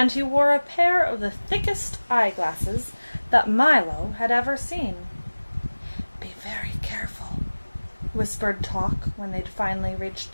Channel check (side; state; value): both; inverted; correlation -1.00